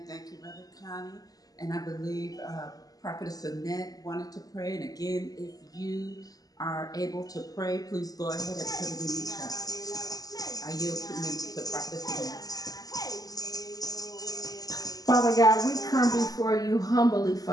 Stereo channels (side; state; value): right; late; 0.18 ms